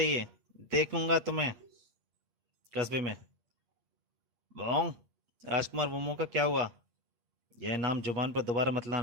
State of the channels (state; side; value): late; left; 8.5 ms